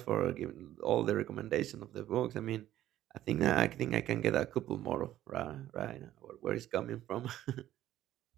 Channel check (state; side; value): quieter; left; 13.1 dB